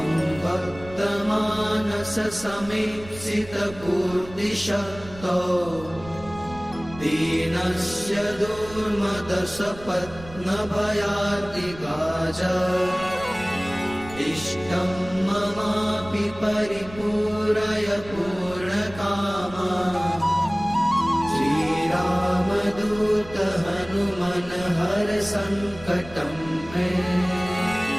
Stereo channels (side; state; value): right; noise; rumble, 17 dB below the sound